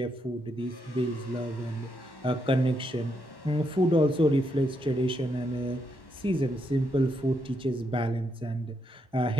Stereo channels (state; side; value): normal; both; correlation 0.79